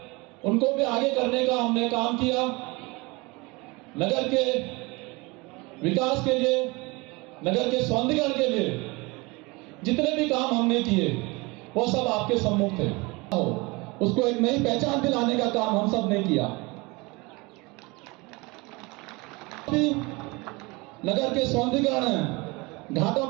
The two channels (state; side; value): quieter; left; 25.3 dB